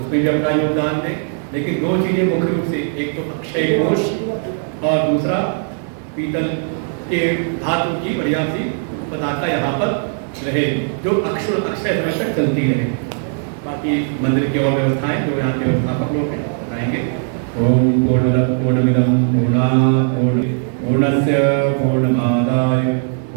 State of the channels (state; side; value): silent; left; 57 dB below the other